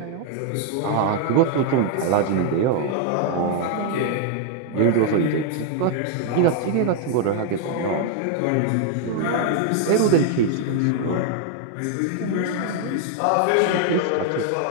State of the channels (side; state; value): both; different; correlation 0.00